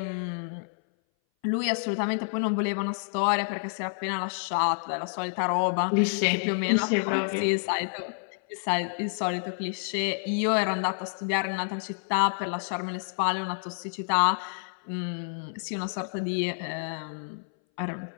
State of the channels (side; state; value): right; silent; 58 dB below the other